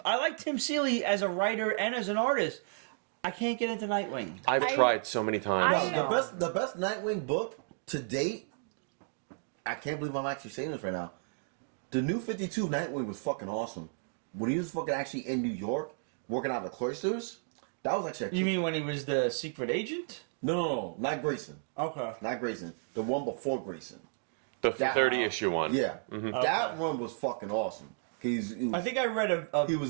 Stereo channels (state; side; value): silent; left; digital silence